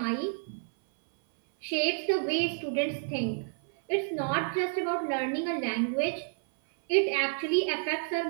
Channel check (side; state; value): left; silent; 58 dB below the other